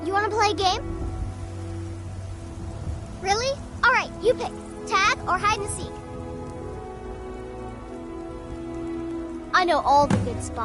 you want to play a game? Really? All right, you pick. Tag or hide and seek? I know all the good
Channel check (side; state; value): both; identical; correlation 1.00